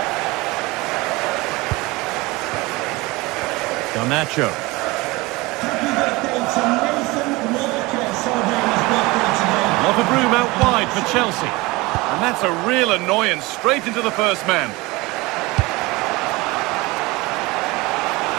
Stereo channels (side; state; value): left; quieter; 22.7 dB